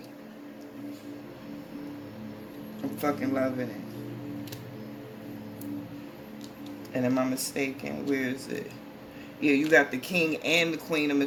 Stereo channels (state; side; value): identical; both; correlation 1.00